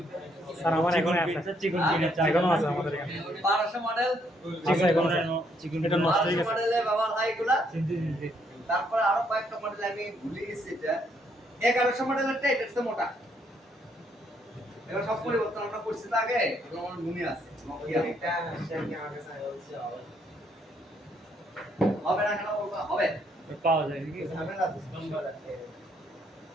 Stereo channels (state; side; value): normal; both; correlation 0.71